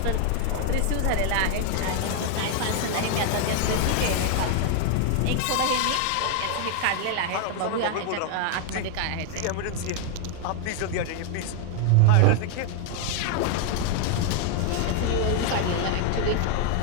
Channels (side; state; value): both; different; correlation 0.00